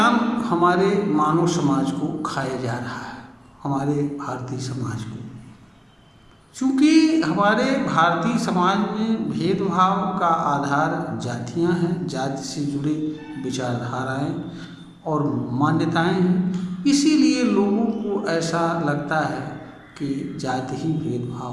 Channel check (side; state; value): both; identical; correlation 1.00